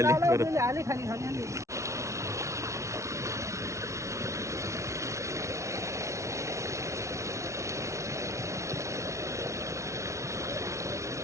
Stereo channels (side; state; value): left; late; 0.14 ms